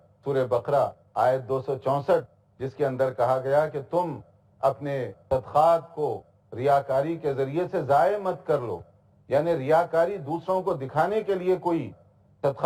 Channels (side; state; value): both; identical; correlation 1.00